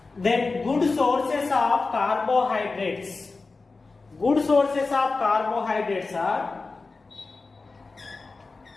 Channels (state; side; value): quieter; right; 3.9 dB